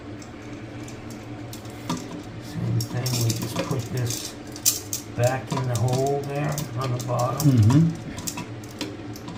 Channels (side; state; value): both; identical; correlation 1.00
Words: Same thing, we just put this back in the hole there on the bottom. Mm-hmm.